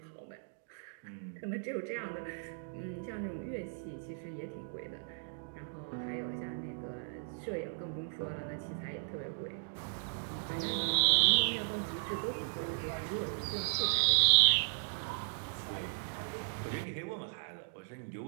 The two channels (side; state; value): left; silent; digital silence